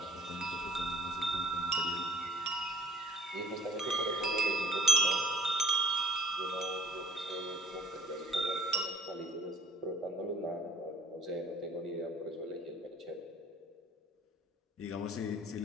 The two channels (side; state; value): both; normal; correlation 0.50